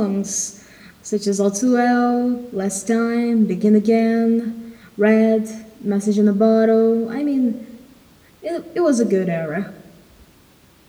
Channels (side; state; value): both; identical; correlation 1.00